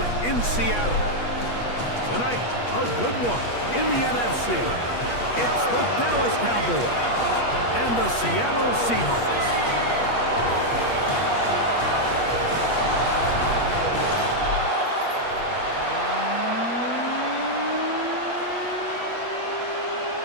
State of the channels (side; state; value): right; late; 8.4 ms